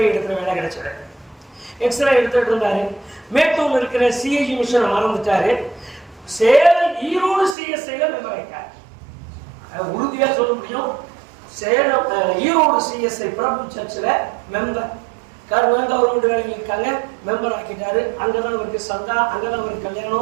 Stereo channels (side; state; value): left; drops out; at 7.6 s